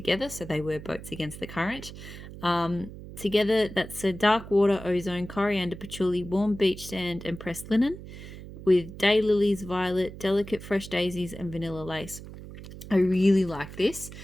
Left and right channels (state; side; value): noise; right; hum, 13 dB below the sound